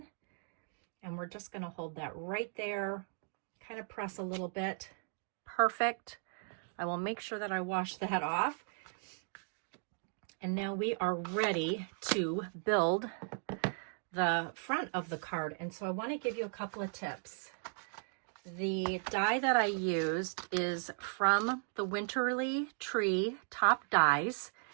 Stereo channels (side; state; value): left; silent; 53 dB below the other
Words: And we're just going to hold that right there, kind of press a little bit. Perfect. I will make sure that I wash that off. And now we are ready to build the front of the card. And so I want to give you a couple of tips. The die that I used is from the Winterly Tree Top Dies,